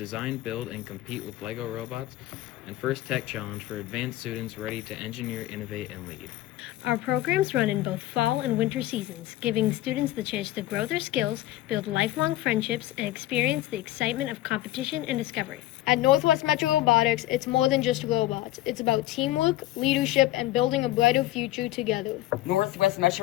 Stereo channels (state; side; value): quieter; right; 15.7 dB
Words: build, and compete with LEGO robots. And First Tech Challenge for advanced students ready to engineer, innovate, and lead. Our programs run in both fall and winter seasons, giving students the chance to grow their skills, build lifelong friendships, and experience the excitement of competition and discovery. At Northwest Metro Robotics, it's more than just robots. It's about teamwork, leadership, and building a brighter future together. Northwest